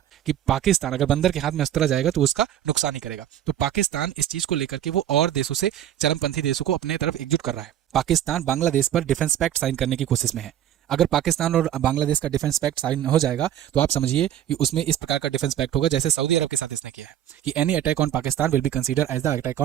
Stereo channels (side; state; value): left; quieter; 11.1 dB